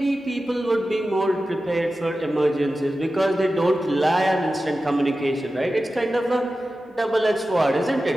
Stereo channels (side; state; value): both; normal; correlation 0.93